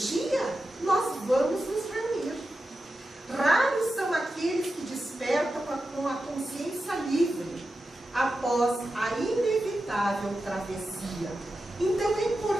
nós vamos nos reunir. Raros são aqueles que despertam com a consciência livre após a inevitável travessia. Então é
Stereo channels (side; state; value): both; normal; correlation 0.91